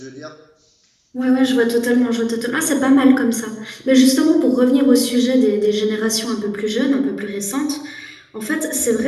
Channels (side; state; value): both; identical; correlation 1.00